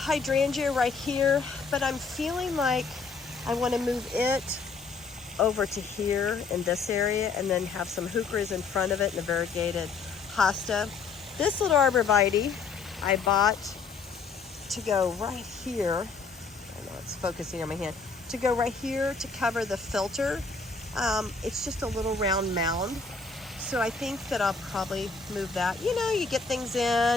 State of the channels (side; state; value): right; quieter; 4.6 dB